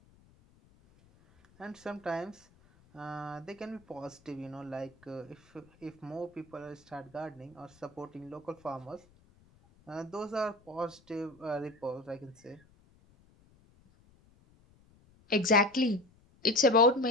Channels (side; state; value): left; noise; rumble, 29 dB below the sound